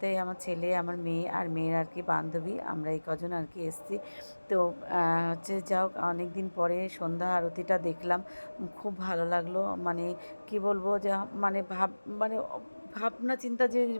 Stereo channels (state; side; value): inverted; both; correlation -1.00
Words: আমার ছেলে, আমার মেয়ে আর মেয়ের আর কি বান্ধবী, আমরা এই কজন আর কি এসেছি। তো হচ্ছে যাও, অনেক দিন পরে সন্ধ্যা আরতিটা দেখলাম, খুব ভালো লাগলো। মানে কি বলবো যে মানে মানে ভাবনা চিন্তা